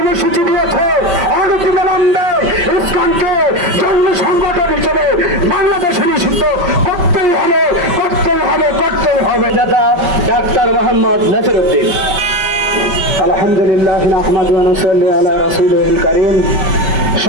দিয়েছে অনতিবিলম্বে ইসলামকে জন্য সংগঠন হিসেবে বাংলাদেশে নিষিদ্ধ করতেই হবে, করতেই হবে, করতেই হবে। দাদা ডাক্তার মোহাম্মদ নাসিরউদ্দিন। আলহামদুলিল্লাহ নাহমাদু ওয়া নুসাল্লি আলা রাসূলিল কারীম।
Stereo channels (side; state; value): left; late; 5.2 ms